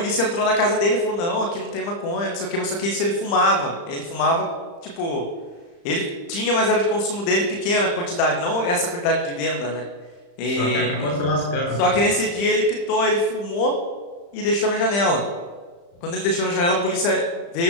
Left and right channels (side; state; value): right; late; 35 ms